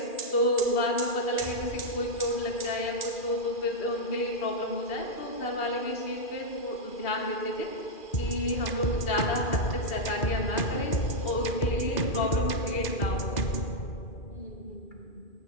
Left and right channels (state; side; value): late; right; 2.4 ms